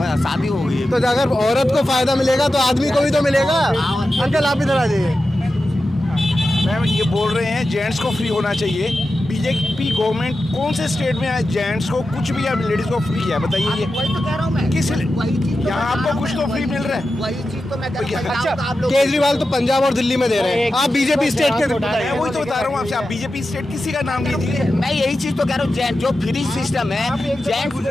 शादी हो गई है, तो अगर औरत को फायदा मिलेगा तो आदमी को भी तो मिलेगा। अंकल आप इधर आ जाइए। मैम ये बोल रहे हैं जेंट्स को फ्री होना चाहिए। बीजेपी गवर्नमेंट कौन से स्टेट में है जेंट्स को कुछ भी या लेडीज को फ्री है? बताइए ये। वही तो कह रहा हूँ मैं, किस तो यहाँ आपको कुछ तो फ्री मिल रहा है? वही चीज तो मैं कह रहा हूँ। अच्छा, केजरीवाल तो पंजाब और दिल्ली में दे रहे हैं, आप बीजेपी स्टेट के। मैं वही तो बता रहा हूँ आपसे, आप बीजेपी स्टेट किसी का नाम लीजिए। मैं यही चीज तो कह रहा हूँ, जेंट्स जो फ्री सिस्टम है, जेंट्स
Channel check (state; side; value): normal; both; correlation 0.92